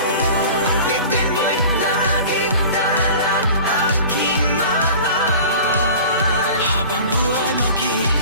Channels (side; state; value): both; inverted; correlation -0.40